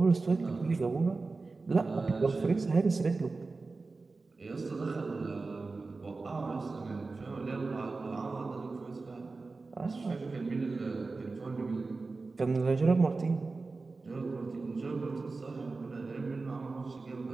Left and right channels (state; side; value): quieter; left; 3.8 dB